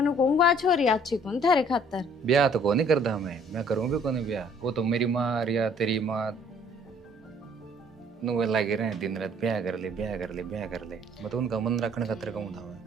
कहूँगा छोरी अच्छी कौन थारे खातर। ब्याह तो को नहीं करता मैं करूँ भी को नहीं ब्याह। वो तो मेरी माँ या तेरी माँ नुए लगे रहे दिन रात ब्याह कर ले ब्याह कर ले ब्याह कर ले, मैं तो उनका मन रखने खातिर कहूँ था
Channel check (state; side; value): normal; both; correlation 0.58